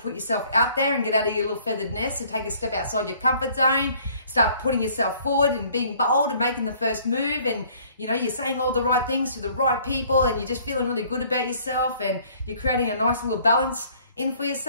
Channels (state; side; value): inverted; both; correlation -0.58